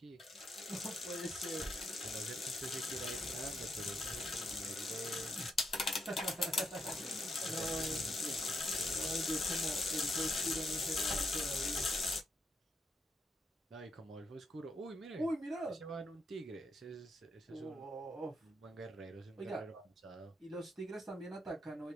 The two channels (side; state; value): both; normal; correlation 0.79